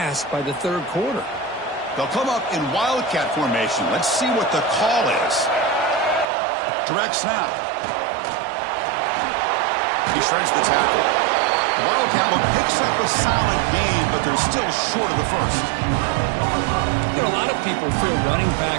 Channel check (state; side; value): drops out; left; at 6.2 s